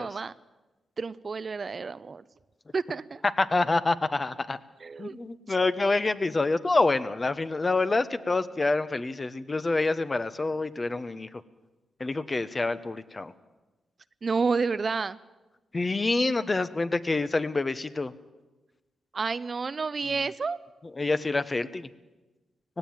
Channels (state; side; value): normal; both; correlation 0.94